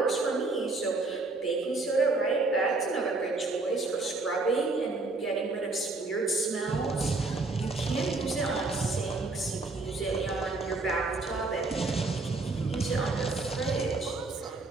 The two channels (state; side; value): quieter; left; 3.4 dB